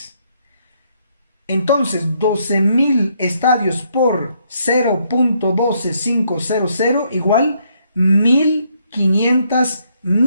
Entonces, 12,000 estadios por 0.12500 igual 1,500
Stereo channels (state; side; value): inverted; both; correlation -0.72